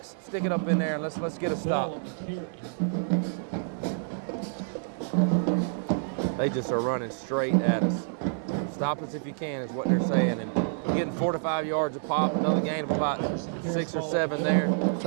stick it up in there, and let's get a stop. They just are running straight at us. Stop us if you can is what they're saying. And getting 4 to 5 yards a pop, another gain of about 6 or 7 there.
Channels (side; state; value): left; silent; digital silence